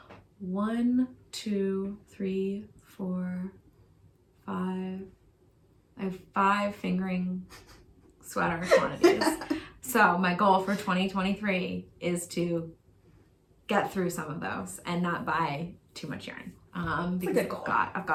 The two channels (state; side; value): identical; both; correlation 1.00